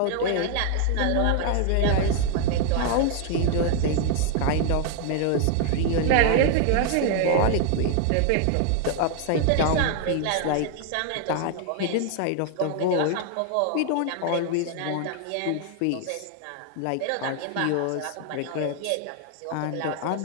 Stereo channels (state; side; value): different; both; correlation 0.00